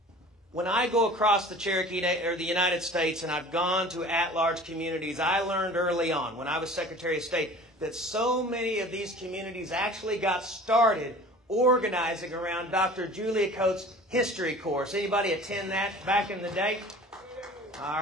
When I go across the Cherokee or the United States and I've gone to at-large communities, I learned early on when I was Secretary of State that so many of these communities actually got started organizing around Dr. Julia Coates' history course. Anybody attend that back in the day? All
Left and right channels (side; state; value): both; normal; correlation 0.44